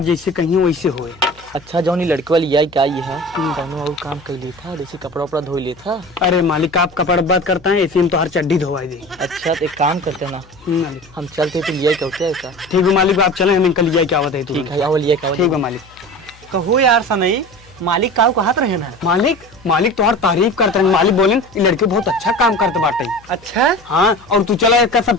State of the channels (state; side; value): noise; left; hum, 26 dB below the sound